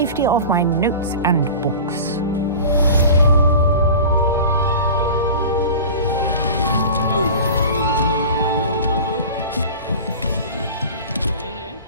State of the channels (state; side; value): inverted; both; correlation -0.36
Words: of my notes and books.